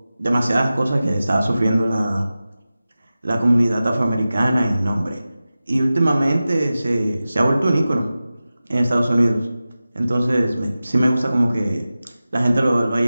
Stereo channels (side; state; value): both; inverted; correlation -0.95